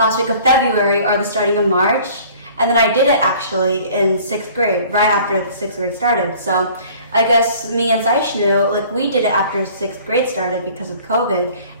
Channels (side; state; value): both; inverted; correlation -0.51